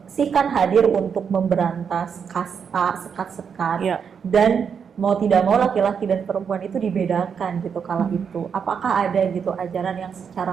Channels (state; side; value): quieter; left; 6.8 dB